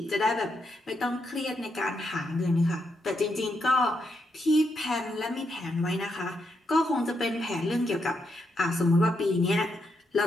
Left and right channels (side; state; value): both; normal; correlation 0.81